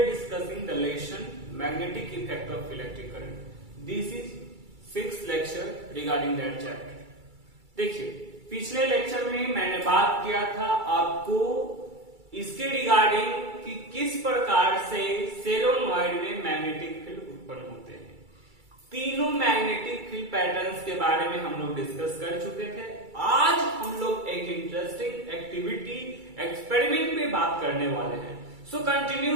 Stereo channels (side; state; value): left; late; 2.3 ms